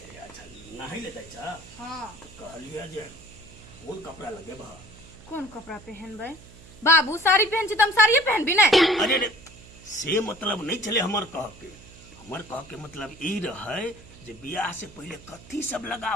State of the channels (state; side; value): noise; right; hum, 21 dB below the sound